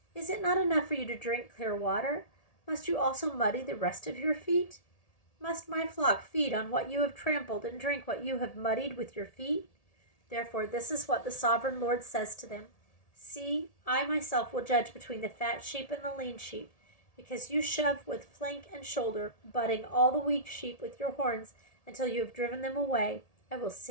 Is it not enough for you to drink clear water? Must you also muddy the rest of your feet? Must my flock feed on what you have trampled and drink what you have muddied with your feet? Therefore, this is what the sovereign Lord says to them. See, I myself will judge between the fat sheep and the lean sheep, because you shove with flank and shoulder, butting all the weak sheep with your horns until you have driven them away. I will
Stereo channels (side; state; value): right; late; 1.8 ms